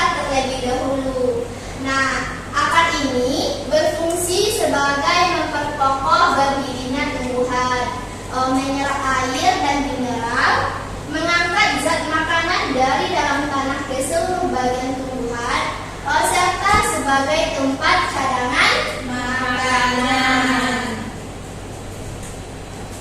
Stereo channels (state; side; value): identical; both; correlation 1.00